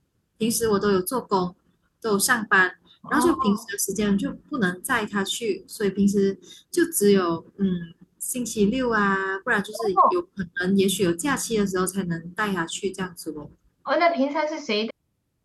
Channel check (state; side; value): identical; both; correlation 1.00